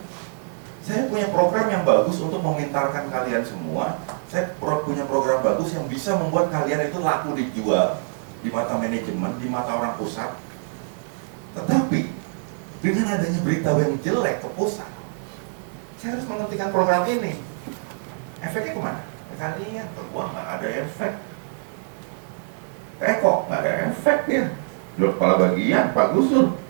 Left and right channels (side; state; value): left; silent; 62 dB below the other